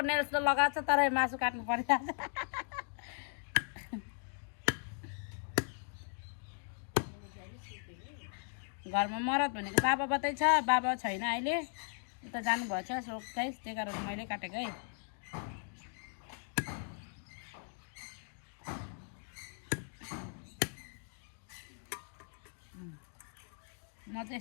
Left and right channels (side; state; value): right; silent; 53 dB below the other